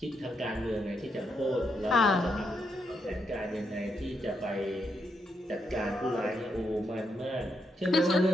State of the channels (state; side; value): normal; both; correlation 0.81